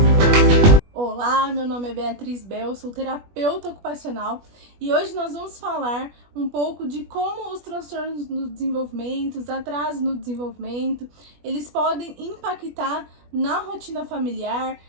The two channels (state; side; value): late; left; 21 ms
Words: Olá, meu nome é Beatriz Bel, sou terapeuta ocupacional e hoje nós vamos falar um pouco de como os transtornos no desenvolvimento, os atrasos no desenvolvimento, eles podem impactar na rotina familiar,